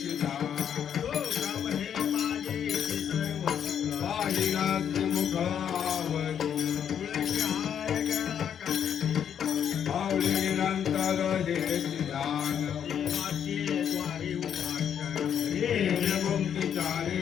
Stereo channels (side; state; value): right; quieter; 8.7 dB